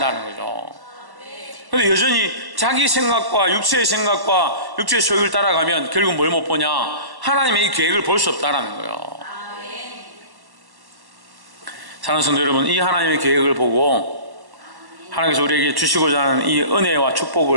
거죠. 그런데 여전히 자기 생각과 육체의 생각과 육체의 소욕을 따라가면 결국 뭘 못 보냐? 하나님의 이 계획을 볼 수 없다는 거예요. 사랑하는 성도 여러분, 이 하나님의 계획을 보고 하나님께서 우리에게 주시고자 하는 이 은혜와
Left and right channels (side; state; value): left; late; 1.1 ms